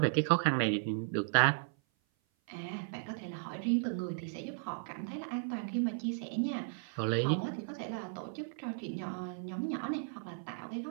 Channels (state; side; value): silent; left; 54 dB below the other